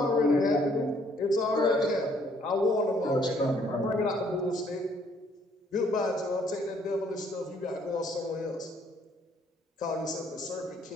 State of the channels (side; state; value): both; normal; correlation 0.65